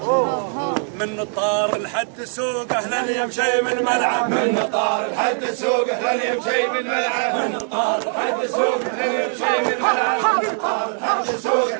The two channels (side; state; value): left; silent; 55 dB below the other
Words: من طار لحد السوق. اهلا يا مشي من الملعب من طار لحد السوق. اهلا يا مشي من الملعب من طار لحد السوق. اهلا يا مشي من الملعب من طار لحد السوق.